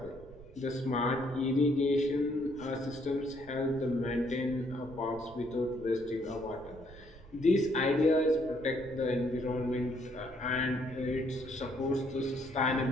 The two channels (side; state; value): right; noise; rumble, 20 dB below the sound